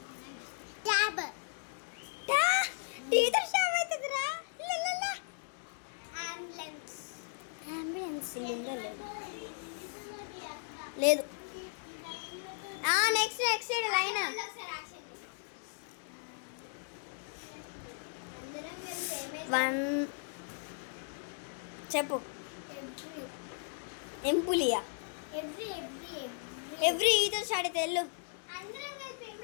ట్యాబ్ టీతో స్టార్ట్ అవుతుందిరా. అంబులెన్స్ అంబులెన్స్ లేదు. Next side line. అందరం కలిసి 1 చెప్పు. ఎంపులియా ఎవ్రీ ఈతో స్టార్ట్ అయితే వెళ్ళు. అందరం కలిసి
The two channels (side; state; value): right; silent; digital silence